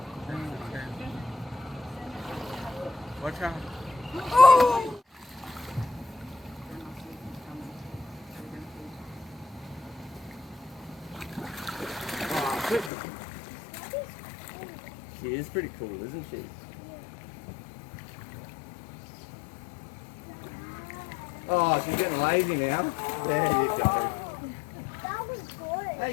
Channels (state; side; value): drops out; right; at 12.9 s